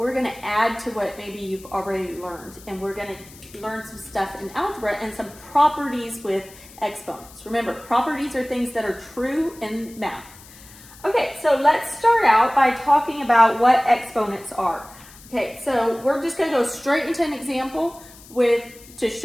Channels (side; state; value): left; noise; hiss, 21 dB below the sound